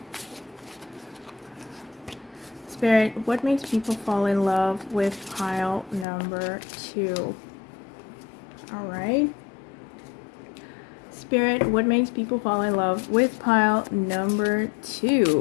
Spirit, what makes people fall in love with pile number 2? Alright. Spirit, what makes people fall in love with pile number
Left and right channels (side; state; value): right; drops out; at 6.1 s